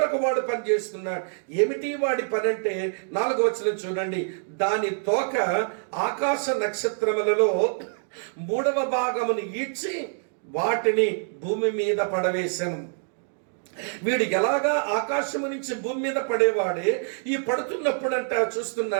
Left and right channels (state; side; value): silent; left; digital silence